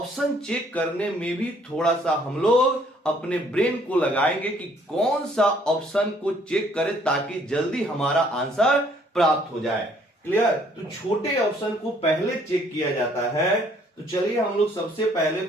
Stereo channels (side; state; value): both; normal; correlation 0.62